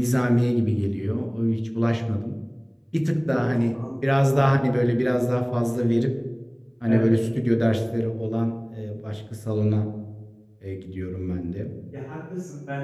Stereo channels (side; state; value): both; identical; correlation 1.00